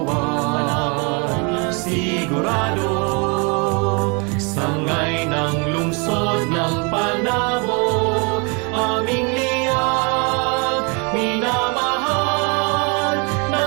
sigurado. Sangay ng lungsod ng Panabo, aming liyag, minamahal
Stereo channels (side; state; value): left; quieter; 32.7 dB